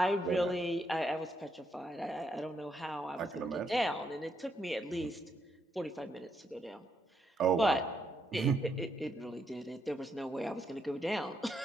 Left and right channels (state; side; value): normal; both; correlation 0.77